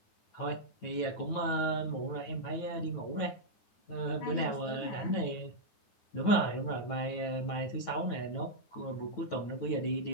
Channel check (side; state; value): right; late; 9.2 ms